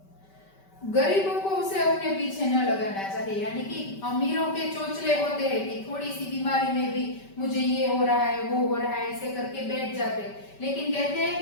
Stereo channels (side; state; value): right; late; 5.2 ms